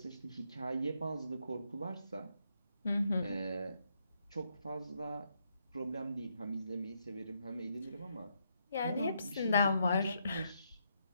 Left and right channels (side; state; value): both; inverted; correlation -0.77